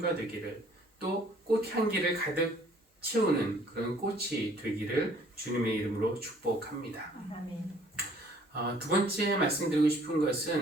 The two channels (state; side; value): normal; both; correlation 0.58